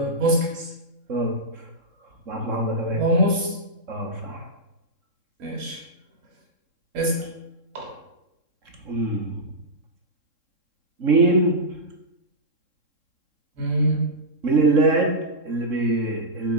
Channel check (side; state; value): left; late; 3.7 ms